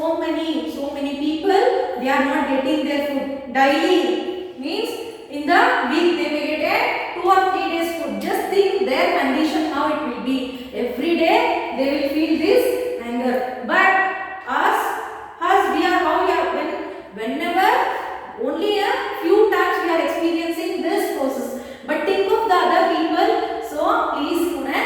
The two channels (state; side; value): identical; both; correlation 1.00